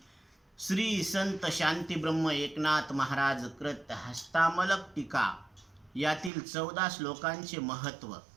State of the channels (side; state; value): left; drops out; at 6.3 s